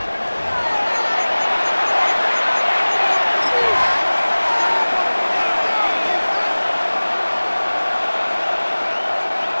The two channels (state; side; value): inverted; both; correlation -1.00